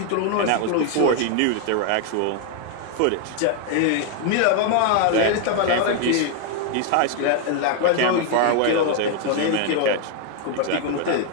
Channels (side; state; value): both; different; correlation 0.00